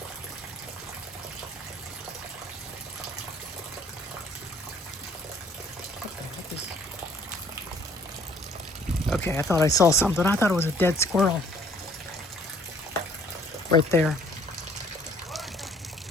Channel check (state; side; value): normal; both; correlation 0.58